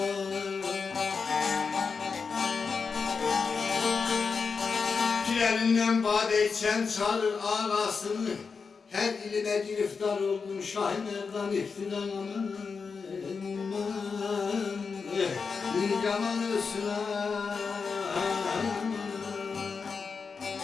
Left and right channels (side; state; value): right; quieter; 5.2 dB